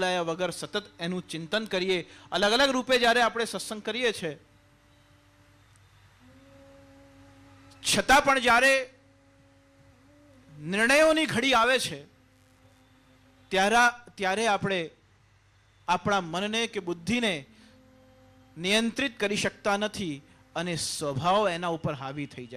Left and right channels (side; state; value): both; identical; correlation 1.00